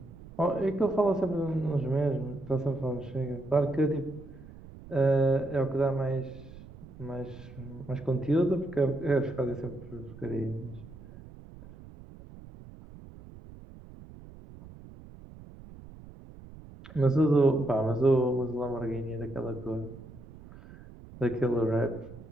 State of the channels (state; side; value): noise; right; rumble, 18 dB below the sound